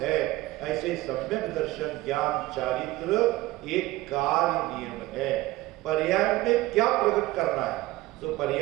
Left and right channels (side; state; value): left; quieter; 18.5 dB